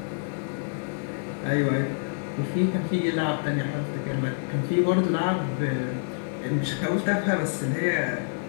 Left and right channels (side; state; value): right; silent; digital silence